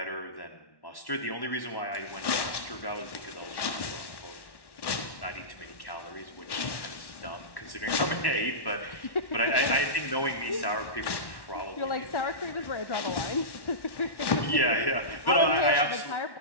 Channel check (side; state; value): right; late; 1.1 ms